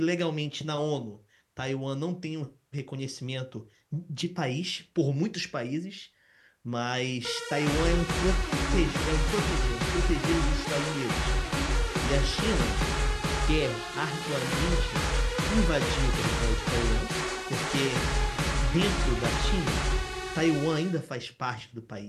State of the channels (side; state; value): both; identical; correlation 1.00